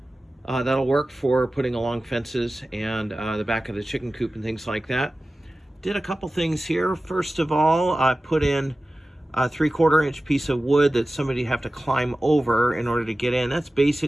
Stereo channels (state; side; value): normal; both; correlation 0.96